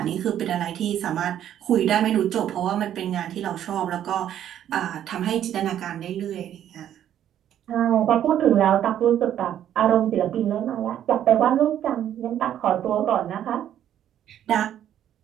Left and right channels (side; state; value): left; quieter; 10.7 dB